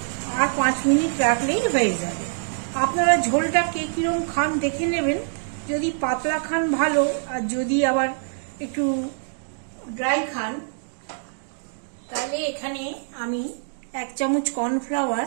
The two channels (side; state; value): left; silent; digital silence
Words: আর 5 মিনিট রাখলেই হয়ে যাবে। আপনারা ঝোলটা কে কিরম খান দেখে নেবেন। যদি পাতলা খান ভালো, আর যদি আবার একটু ড্রাই খান তাহলে এখানে আমি 1 চামচ কর্নফ্লাওয়ার